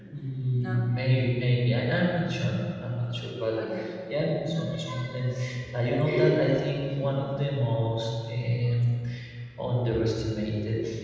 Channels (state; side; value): identical; both; correlation 1.00